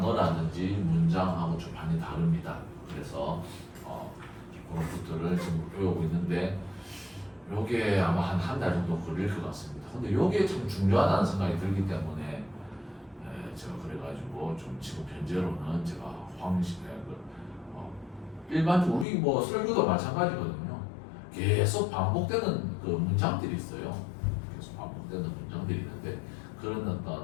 문장하고 좀 많이 다릅니다. 그래서 그런 것들을 지금 배우고 있는데 요게 아마 한 달 정도 걸릴 것 같습니다. 근데 요게 참 중요하다는 생각이 들기 때문에 제가 그래가지고 좀 지금 현재로는 제가 일반적으로 우리 뭐 설교도 마찬가지거든요. 계속 반복되는 그 문장들이 있어요. 계속 반복되는 문장들이 있는데 그런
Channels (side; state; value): right; drops out; at 19.1 s